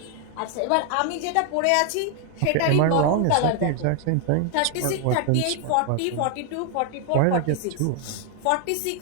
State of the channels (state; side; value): different; both; correlation 0.00